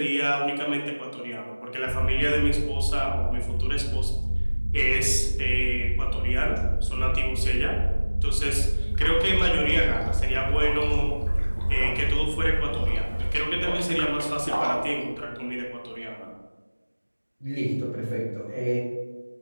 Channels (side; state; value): both; inverted; correlation -1.00